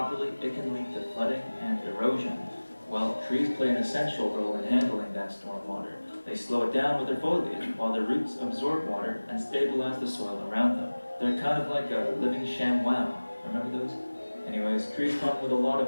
it can lead to flooding and erosion. Well, trees play an essential role in handling that storm water. They slow it down with their foliage, while their roots absorb water and stabilize the soil around them. They're kind of like a living ShamWow. Remember those? Anyways, trees come with a lot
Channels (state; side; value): inverted; both; correlation -1.00